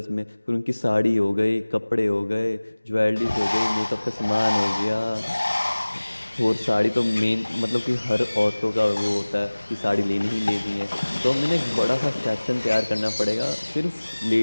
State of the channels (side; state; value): both; inverted; correlation -1.00